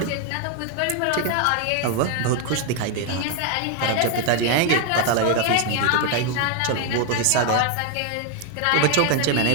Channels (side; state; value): both; different; correlation 0.00